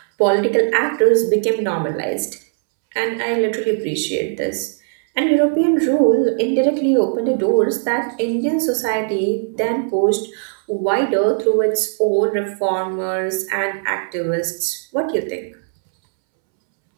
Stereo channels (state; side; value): silent; left; 67 dB below the other